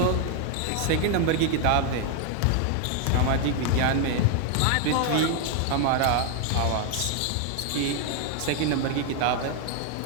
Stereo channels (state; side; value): different; both; correlation 0.00